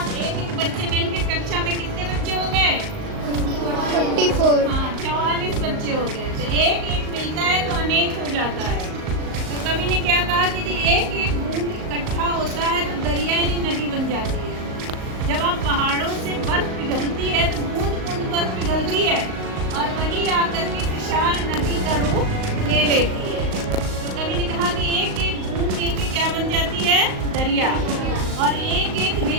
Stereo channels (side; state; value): left; late; 38 ms